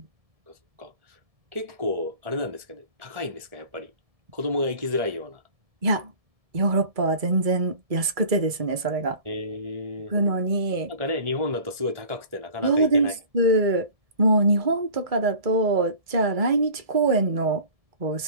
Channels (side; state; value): left; late; 1.7 ms